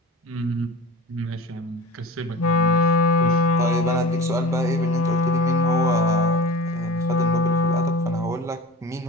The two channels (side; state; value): both; normal; correlation 0.35